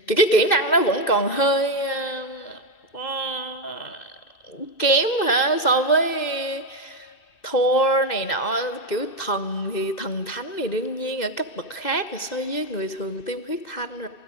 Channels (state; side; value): late; right; 2.6 ms